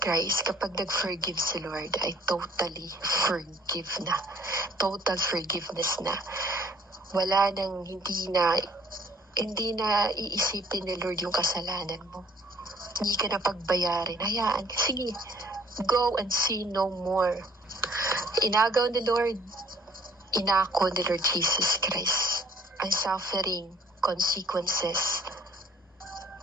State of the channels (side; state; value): both; normal; correlation 0.57